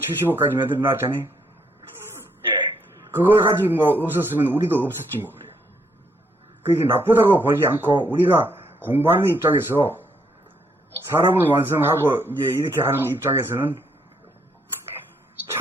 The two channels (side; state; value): both; normal; correlation 0.73